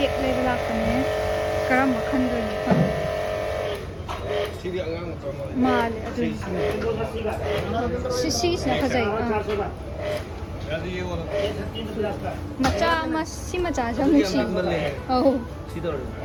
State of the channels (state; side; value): identical; both; correlation 1.00